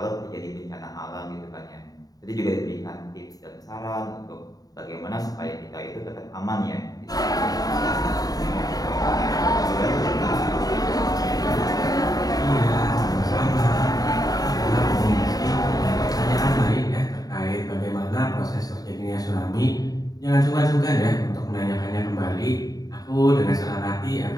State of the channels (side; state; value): right; late; 0.18 ms